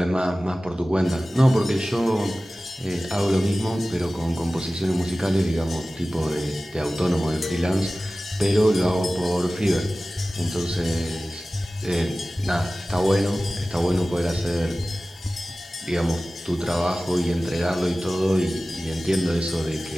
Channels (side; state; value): both; normal; correlation 0.96